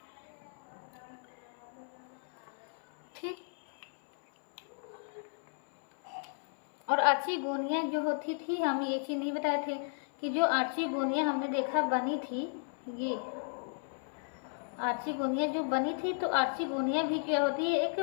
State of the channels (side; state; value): right; silent; 55 dB below the other